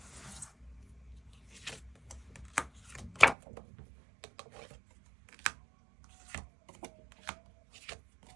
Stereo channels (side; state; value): left; drops out; at 3.4 s